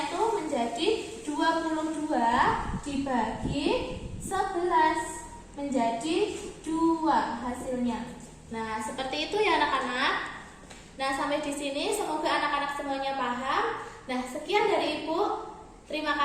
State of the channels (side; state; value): both; identical; correlation 1.00